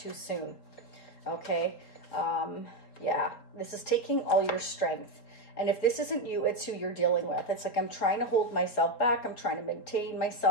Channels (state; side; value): late; right; 4.0 ms